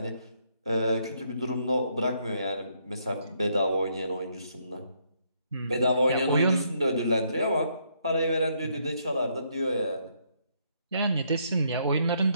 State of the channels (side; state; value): both; inverted; correlation -0.72